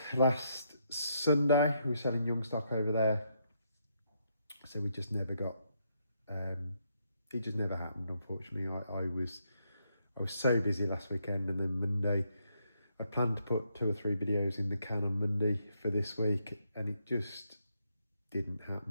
last Sunday. We were selling young stock over there, so we just never got it just never happened, unfortunately. I was so busy last weekend, and then Monday I planned to put 2 or 3 videos in the can on Monday for this week, and it just didn't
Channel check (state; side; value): inverted; both; correlation -0.77